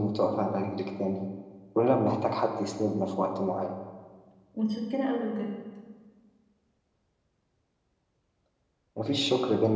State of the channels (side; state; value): both; identical; correlation 1.00